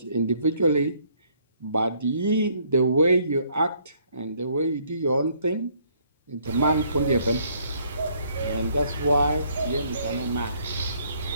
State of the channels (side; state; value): both; inverted; correlation -0.65